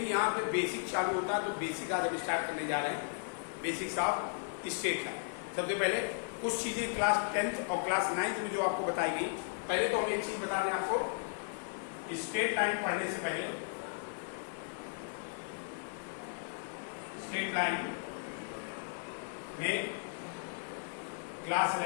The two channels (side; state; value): right; silent; digital silence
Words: यहाँ पे बेसिक चालू होता है, तो बेसिक आज हम स्टार्ट करने जा रहे हैं। Basics of straight line. सबसे पहले कुछ चीजें क्लास 10th और क्लास 9th में जो आपको बताएगी। पहले तो हम एक चीज बता दें आपको, स्ट्रेट लाइन पढ़ने से पहले स्ट्रेट लाइन में क्लास